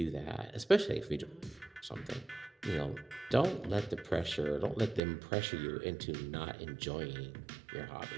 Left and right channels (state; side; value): drops out; left; at 5.0 s